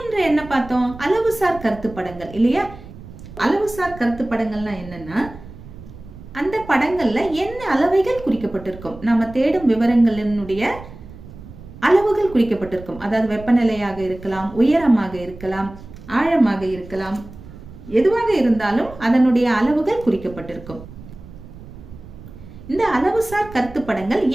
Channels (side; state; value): right; noise; rumble, 16 dB below the sound